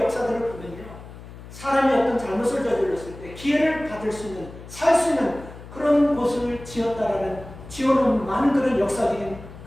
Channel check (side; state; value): left; noise; hum, 16 dB below the sound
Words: 역사들을 보면요, 사람이 어떤 잘못을 저질렀을 때 기회를 받을 수 있는, 살 수 있는 그런 곳을 지어놓은 많은 그런 역사적인